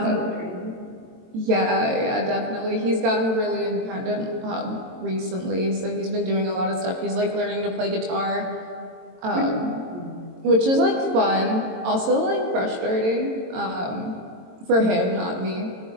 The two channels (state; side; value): late; left; 22 ms